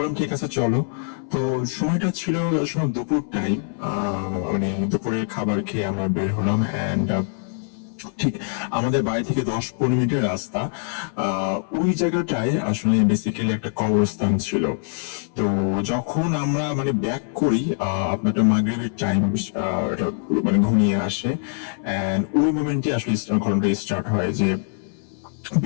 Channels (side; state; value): right; silent; 63 dB below the other